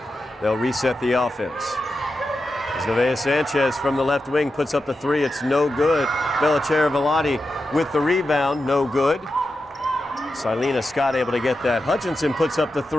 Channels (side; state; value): both; normal; correlation 0.90